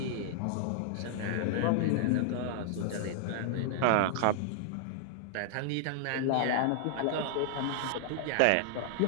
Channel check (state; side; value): different; both; correlation -0.01